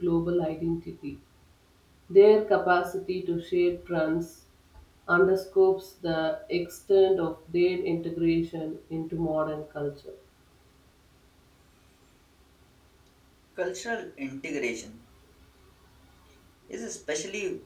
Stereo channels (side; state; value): both; identical; correlation 1.00